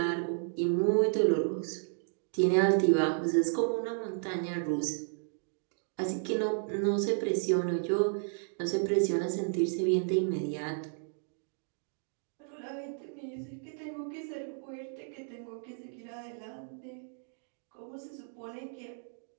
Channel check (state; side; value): silent; left; digital silence